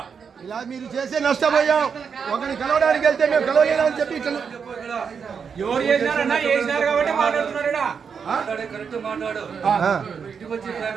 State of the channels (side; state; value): left; quieter; 6.4 dB